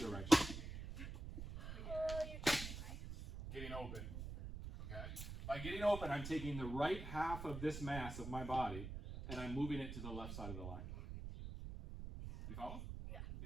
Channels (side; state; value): right; noise; rumble, 7 dB below the sound